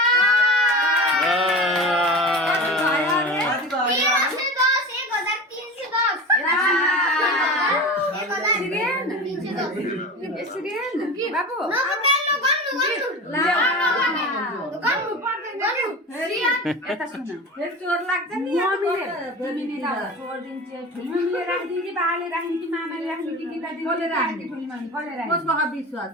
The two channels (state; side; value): normal; both; correlation 0.31